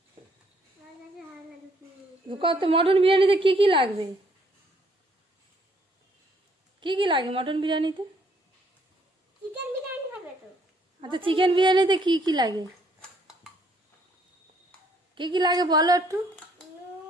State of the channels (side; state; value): both; normal; correlation 0.66